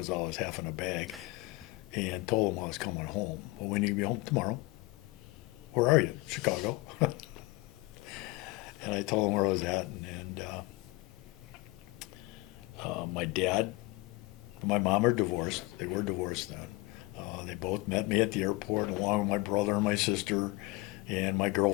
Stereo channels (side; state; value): right; quieter; 22.4 dB